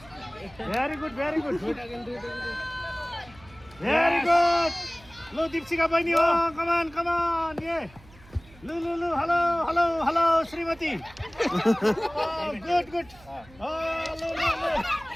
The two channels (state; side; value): noise; right; hum, 24 dB below the sound